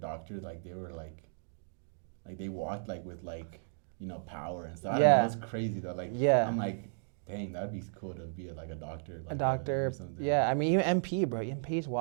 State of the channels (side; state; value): left; silent; digital silence